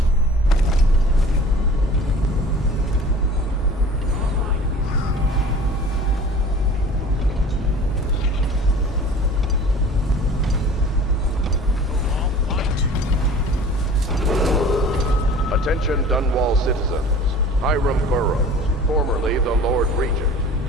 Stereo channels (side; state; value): both; normal; correlation 0.44